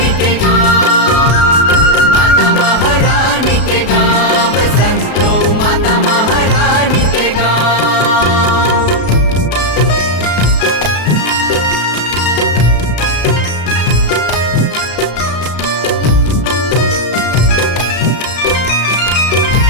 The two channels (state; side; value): late; right; 33 ms